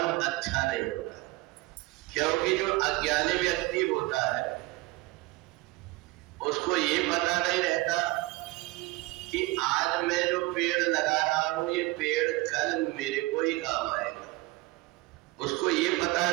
अच्छा नहीं होता। क्योंकि जो अज्ञानी व्यक्ति होता है उसको ये पता नहीं रहता कि आज मैं जो पेड़ लगा रहा हूं ये पेड़ कल मेरे को ही काम आएगा। उसको ये पता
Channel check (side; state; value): left; quieter; 21.7 dB